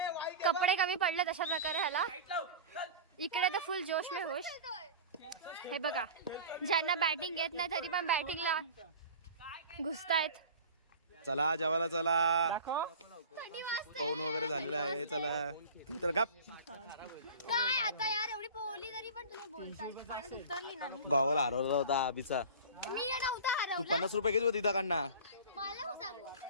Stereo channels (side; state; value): both; inverted; correlation -0.36